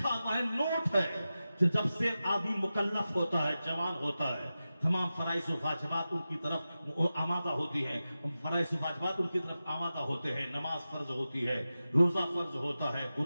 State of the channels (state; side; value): inverted; both; correlation -0.93